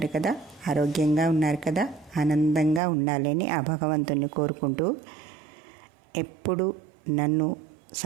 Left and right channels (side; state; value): left; drops out; at 2.8 s